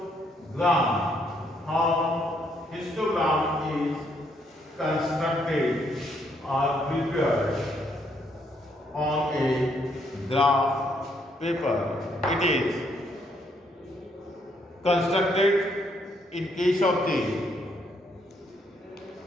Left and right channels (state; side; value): normal; both; correlation 0.72